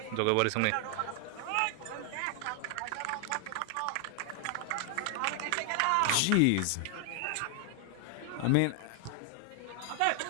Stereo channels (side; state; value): both; different; correlation 0.00